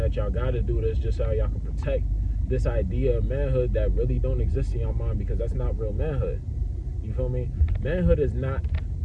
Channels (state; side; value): identical; both; correlation 1.00